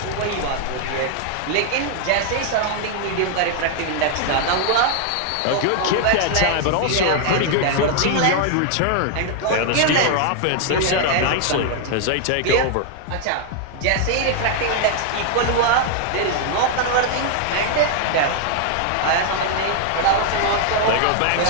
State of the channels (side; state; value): both; different; correlation 0.00